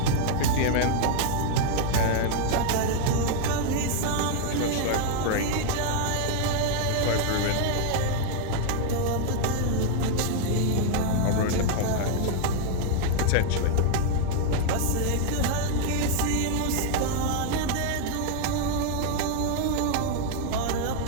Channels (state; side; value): different; both; correlation 0.00